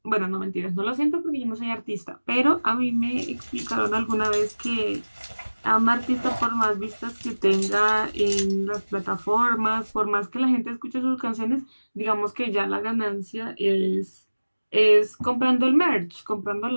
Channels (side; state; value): both; inverted; correlation -1.00